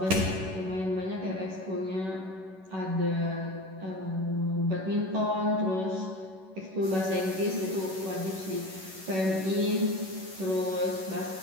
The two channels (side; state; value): left; late; 11 ms